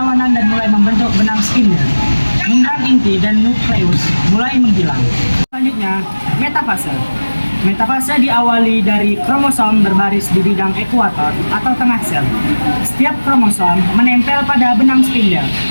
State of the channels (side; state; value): both; inverted; correlation -1.00